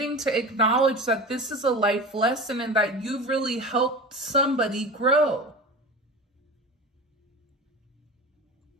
to acknowledge that this is a life lesson and that you've really helped somebody grow.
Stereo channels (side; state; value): both; normal; correlation 0.31